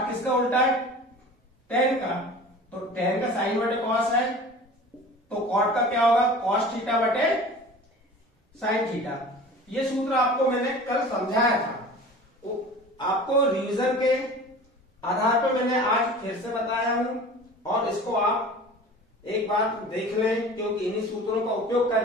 किसका उल्टा है, टेन का, तो टेन का साइन बटे कॉस है, तो कॉट का क्या होगा, कॉस थीटा बटे साइन थीटा। ये सूत्र आपको मैंने कल समझाया था, आपको रिवीजन के आधार पर मैंने आज फिर से बताया हूं, और इसको आप एक बार देख लें, क्योंकि इन्हीं सूत्रों का उपयोग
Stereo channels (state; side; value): normal; both; correlation 0.40